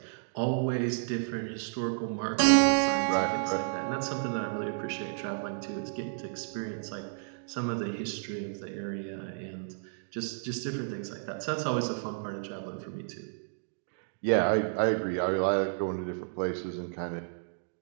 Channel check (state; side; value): silent; left; digital silence